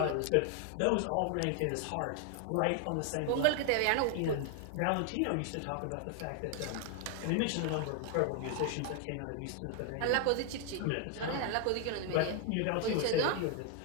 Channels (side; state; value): both; different; correlation 0.00